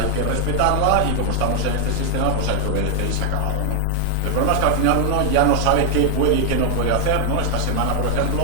que respetarla y como estamos en este sistema, pues hay que obedecer y se ha acabado, ¿no? El problema es que al final uno ya no sabe qué puede y qué no puede hacer, ¿no? Esta semana, por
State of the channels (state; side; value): normal; both; correlation 0.00